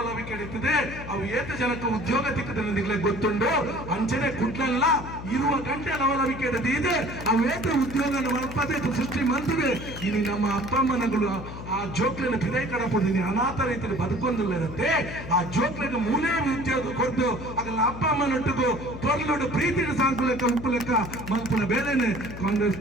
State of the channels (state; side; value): noise; left; hum, 10 dB below the sound